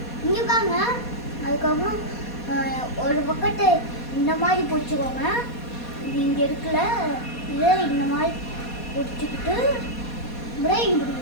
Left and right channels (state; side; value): late; right; 4.2 ms